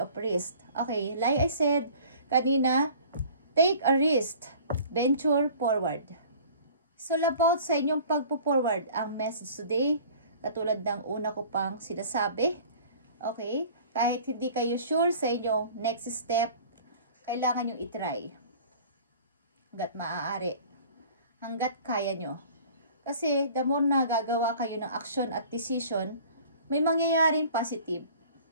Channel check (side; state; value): both; inverted; correlation -0.47